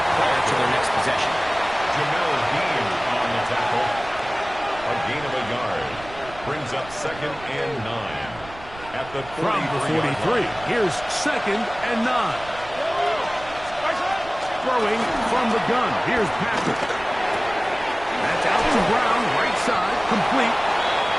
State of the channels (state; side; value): noise; right; rumble, 18 dB below the sound